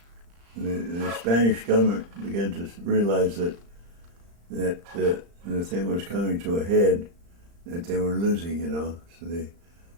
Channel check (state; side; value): late; left; 35 ms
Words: the Spanish government began to realize that the thing was coming to a head, that they were losing, you know. So they